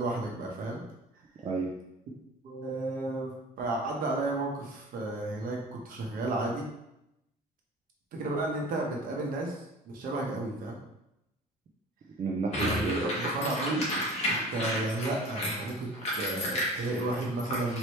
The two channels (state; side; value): normal; both; correlation 0.41